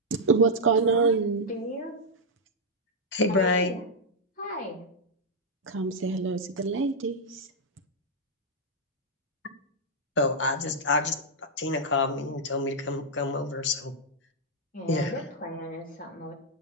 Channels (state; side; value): normal; both; correlation -0.05